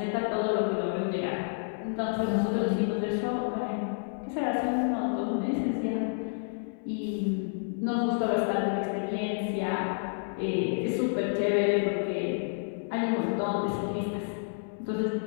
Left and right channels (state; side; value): silent; right; 58 dB below the other